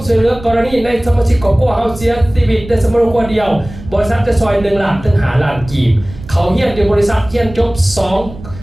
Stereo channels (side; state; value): right; noise; rumble, 15 dB below the sound